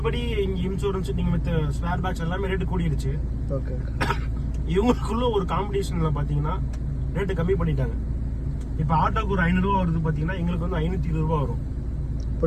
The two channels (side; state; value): both; identical; correlation 1.00